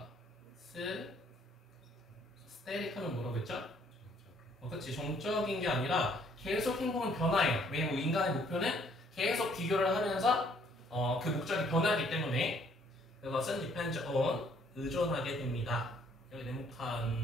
static 하면 뭐라고 했죠? 그치. 정적인 게 아니라 계속 행복은 변화해요. 왜냐면 인간의 목표는 계속 비교를 하면서 그 목적이 변하기 때문에 그것은 depends on, 의존하게 됩니다. 여기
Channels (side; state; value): both; normal; correlation 0.64